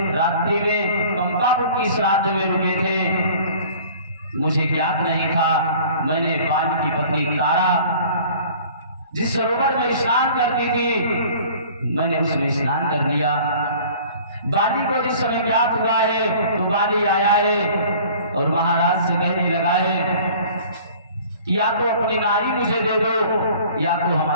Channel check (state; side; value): inverted; both; correlation -0.48